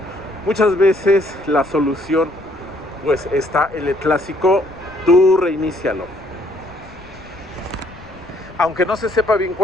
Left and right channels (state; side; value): noise; left; rumble, 22 dB below the sound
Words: muchas veces la solución pues está en el clásico: tú reinícialo. Aunque no se sepa bien